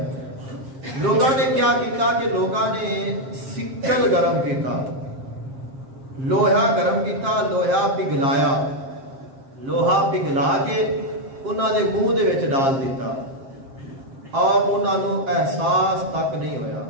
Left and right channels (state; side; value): late; left; 7.5 ms